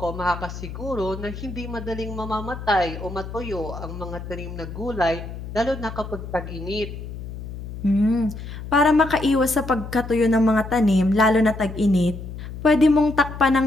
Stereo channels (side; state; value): left; noise; hum, 10 dB below the sound